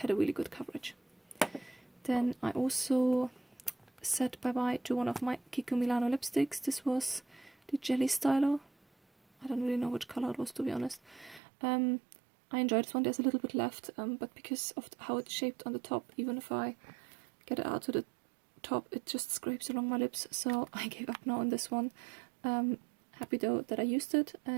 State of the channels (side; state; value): left; drops out; at 11.4 s